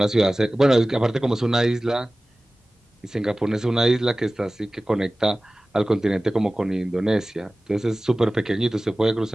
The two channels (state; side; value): normal; both; correlation 0.97